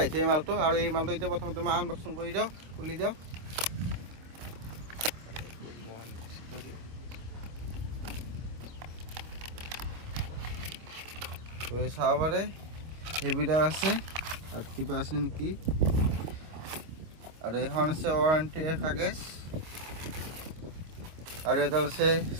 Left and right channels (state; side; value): late; left; 25 ms